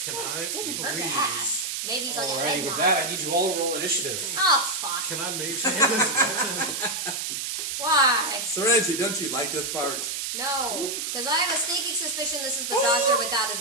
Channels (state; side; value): noise; right; hiss, 3 dB below the sound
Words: I Didn't hurt to please? ask. Maybe he's like a Alrighty, head with nod. that, I need you all to roll initiative. Oh fuck! Can I make changes? Why? Serenity, don't you like this part? No, because I have a sneaking suspicion this is the doctor without